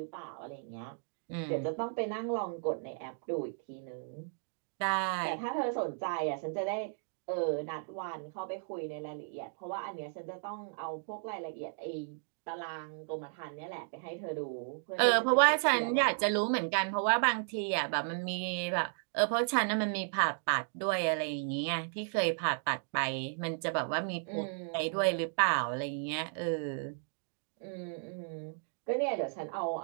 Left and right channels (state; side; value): silent; left; digital silence